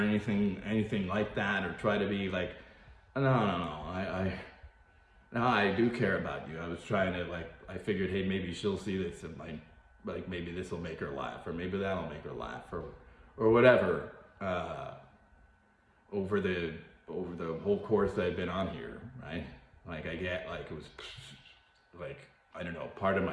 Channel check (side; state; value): both; identical; correlation 1.00